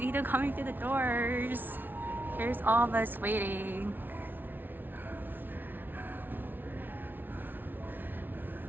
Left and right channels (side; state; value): left; late; 0.092 ms